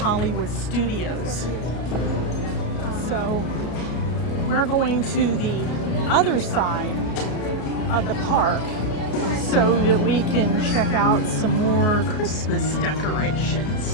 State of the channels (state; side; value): late; right; 33 ms